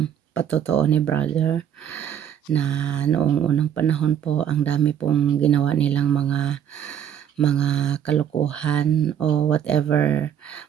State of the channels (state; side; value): quieter; left; 9.3 dB